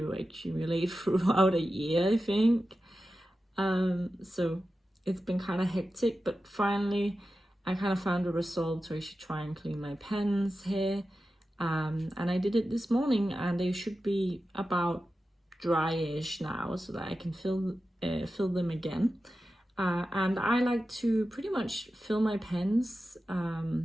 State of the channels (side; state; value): both; normal; correlation 0.93